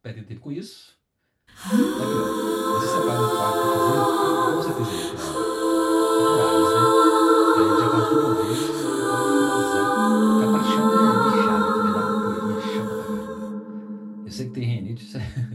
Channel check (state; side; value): identical; both; correlation 1.00